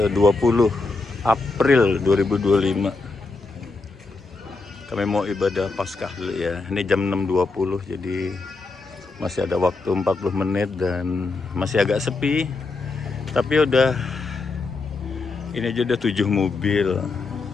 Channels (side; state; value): right; quieter; 3.8 dB